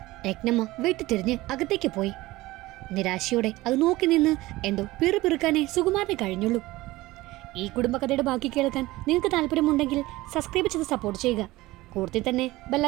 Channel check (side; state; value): left; quieter; 18.8 dB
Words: രത്നമ്മ വെട്ടിത്തിരിഞ്ഞ് അകത്തേക്ക് പോയി. നിരാശയോടെ അത് നോക്കി നിന്ന് എന്തോ പിറുപിറുക്കാനേ സുകുമാരനെ കഴിഞ്ഞുള്ളൂ. ഈ കുടുംബകഥയുടെ ബാക്കി കേൾക്കാൻ നിങ്ങൾക്ക് താല്പര്യമുണ്ടെങ്കിൽ സബ്സ്ക്രൈബ് ചെയ്ത് സപ്പോർട്ട് ചെയ്യുക. കൂടുതൽ തന്നെ